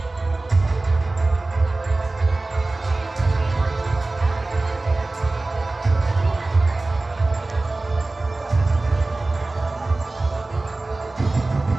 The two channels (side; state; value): left; quieter; 3.1 dB